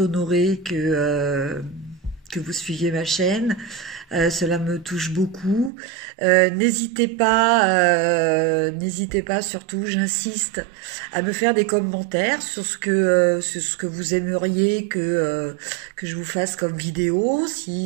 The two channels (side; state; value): left; drops out; at 5.7 s